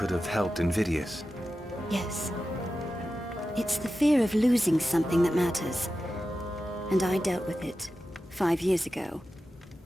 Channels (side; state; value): both; normal; correlation 0.92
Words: have helped Invidious. Yes. It's the fear of losing something that matters. And I dealt with it 5 years ago,